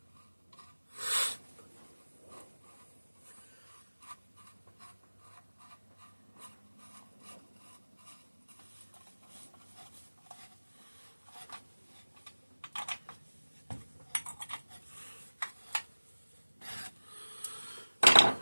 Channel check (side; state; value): both; inverted; correlation -1.00